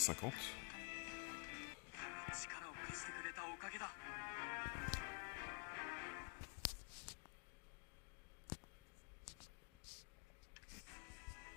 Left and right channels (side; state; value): right; quieter; 33.8 dB